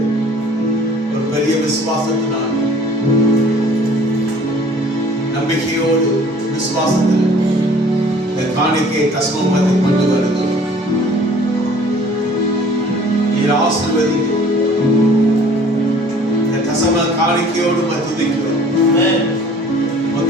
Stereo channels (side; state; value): both; normal; correlation 0.52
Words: ஒரு பெரிய விசுவாசத்தினால், நம்பிக்கையோடு விசுவாசத்தில் இந்த காணிக்கையை தசமபத்தை கொண்டு வருகிறோம். நீர் ஆசீர்வதிங்க. இந்த தசம காணிக்கையோடு துதிக்கிறோம்.